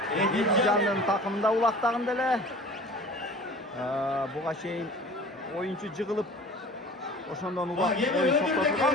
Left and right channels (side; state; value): both; normal; correlation 0.42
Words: Edilcan'ın takımında ulaqtağın dele. Buğa şeyin oyuncu jığılıp oşondan ulaq oyun toktotulgan.